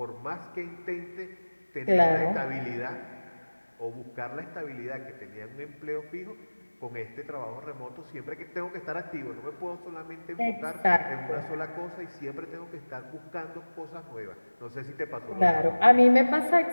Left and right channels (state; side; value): inverted; both; correlation -1.00